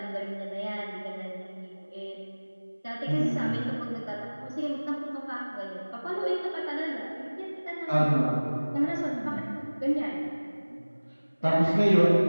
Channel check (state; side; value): inverted; both; correlation -1.00